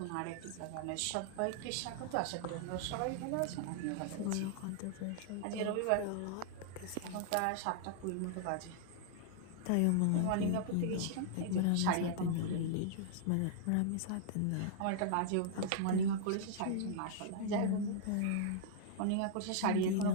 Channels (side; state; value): both; different; correlation -0.01